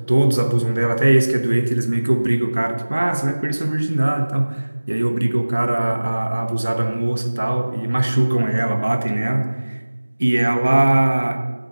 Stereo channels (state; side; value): inverted; both; correlation -1.00